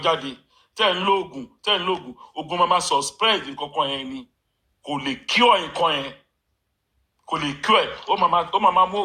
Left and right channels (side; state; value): both; identical; correlation 1.00